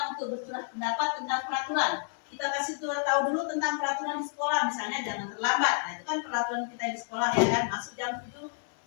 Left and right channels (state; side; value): silent; right; 58 dB below the other